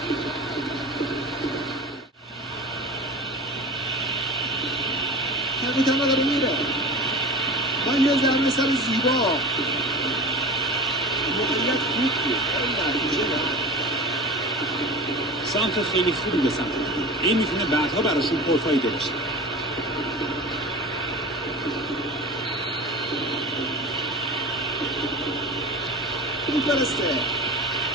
کپیتان داره میره. با یه ضربه سر زیبا. موقعیت خوب بود. نتیجه نه. سانتر خیلی خوبی به سمت بود. این میتونه بعدها براشون پرفایده باشه. میفرسته.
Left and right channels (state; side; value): normal; both; correlation 0.33